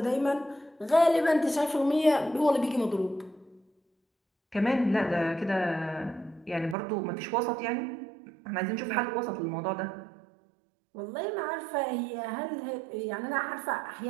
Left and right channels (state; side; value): drops out; left; at 6.8 s